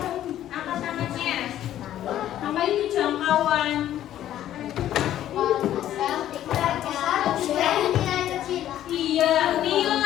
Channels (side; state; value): right; quieter; 12.1 dB